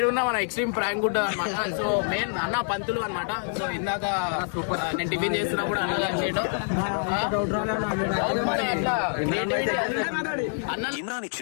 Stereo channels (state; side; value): silent; right; digital silence